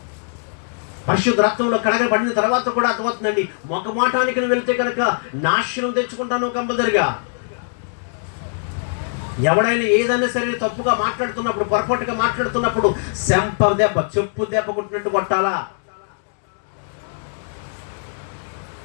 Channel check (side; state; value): right; silent; digital silence